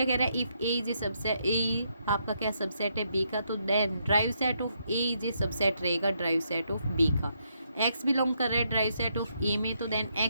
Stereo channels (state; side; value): inverted; both; correlation -0.77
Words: कह रहा है, if A is a subset, A आपका क्या सबसेट है बी का, तो then derived set of A is a subset रहेगा ड्राइव सेट ऑफ बी का। एक्स बिलोंग कर रहा है ड्राइव सेट ऑफ ए में, तो देन